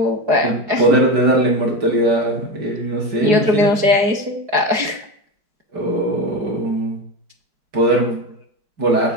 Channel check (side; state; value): left; late; 4.8 ms